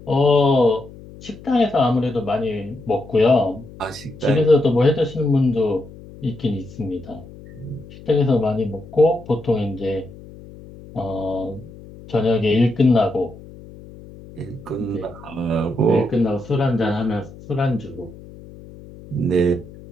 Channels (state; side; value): noise; left; hum, 18 dB below the sound